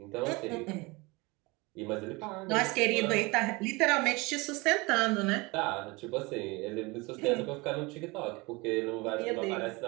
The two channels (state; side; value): quieter; left; 25.0 dB